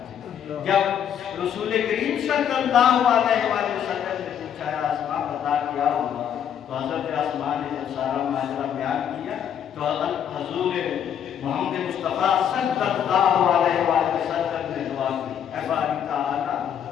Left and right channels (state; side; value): quieter; right; 9.0 dB